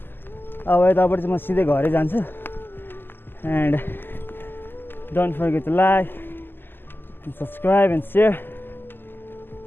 अब यताबाट चाहिँ म सिधै घरै जान्छु। And don't forget to like and subscribe and share.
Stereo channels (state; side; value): late; right; 0.097 ms